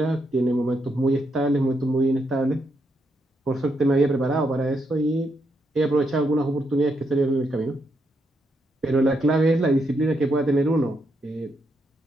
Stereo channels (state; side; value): normal; both; correlation 0.79